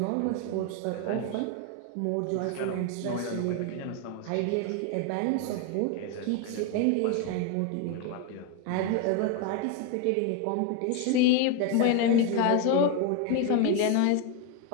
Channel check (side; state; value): both; different; correlation 0.01